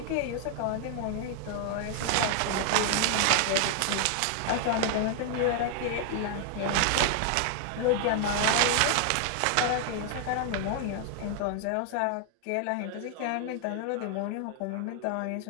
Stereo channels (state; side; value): different; both; correlation 0.00